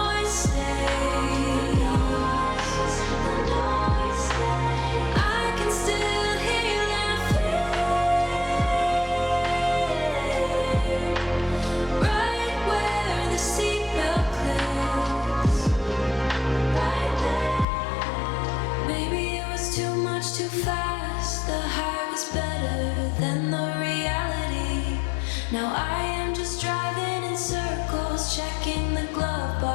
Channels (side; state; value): right; drops out; at 17.7 s